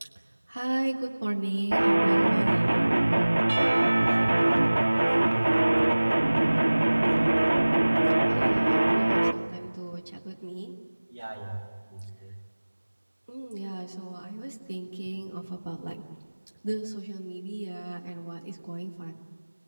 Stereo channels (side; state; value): both; inverted; correlation -1.00